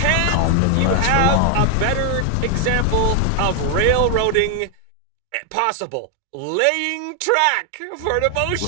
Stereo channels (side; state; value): both; different; correlation 0.00